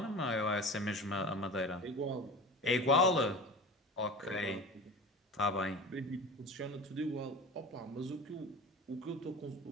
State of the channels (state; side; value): normal; both; correlation 0.34